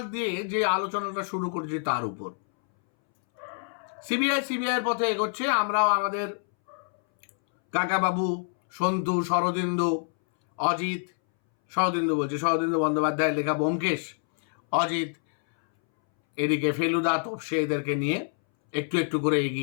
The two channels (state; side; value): silent; right; 60 dB below the other